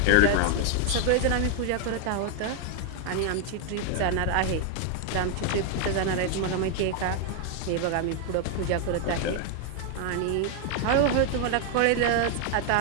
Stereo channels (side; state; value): both; different; correlation 0.00